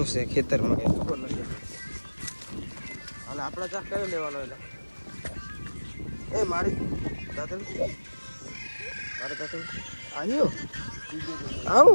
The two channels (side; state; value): both; inverted; correlation -1.00